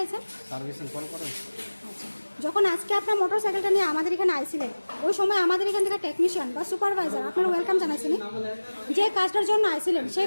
সার্ভিসিং কল করেন। আচ্ছা, যখন আজকে আপনার মোটর সাইকেলটা নিয়ে আমাদের এখানে আইছিলেন, ওই সময় আমাদের এখান থেকে টেকনিশিয়ান বা সুপারভাইজার আপনার ওয়েলকাম জানাইছিনি? যে কাজটার জন্য আইছিলেন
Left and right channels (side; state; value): both; inverted; correlation -1.00